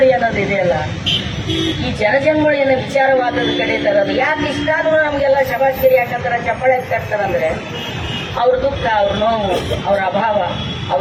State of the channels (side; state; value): both; identical; correlation 1.00